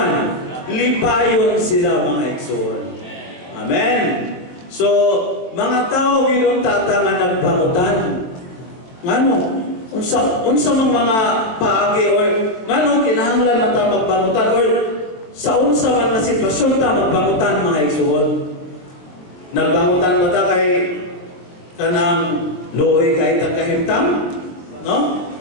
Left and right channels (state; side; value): late; right; 22 ms